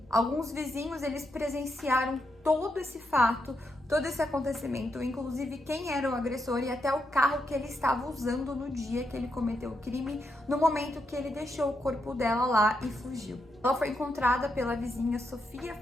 Alguns vizinhos, eles presenciaram todo esse fato, todo esse acontecimento, inclusive quem era o agressor e até o carro que ele estava usando no dia que ele cometeu o crime, no momento que ele deixou o corpo dela lá e fugiu. Ela foi encontrada pela vizinha Sofia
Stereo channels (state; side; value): normal; both; correlation 0.82